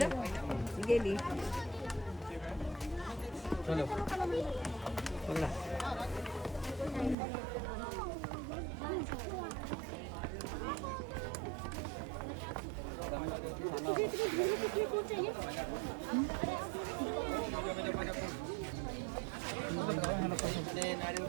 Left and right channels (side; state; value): left; drops out; at 7.2 s